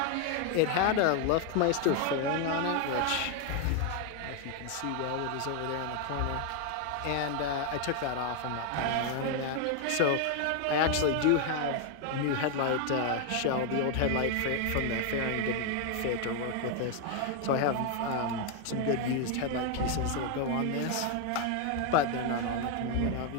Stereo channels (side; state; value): both; different; correlation 0.01